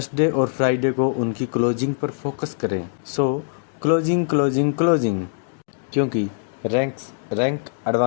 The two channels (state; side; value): silent; right; digital silence